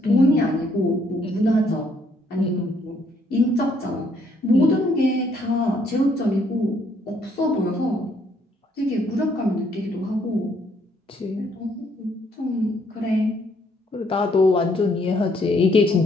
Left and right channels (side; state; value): both; normal; correlation 0.68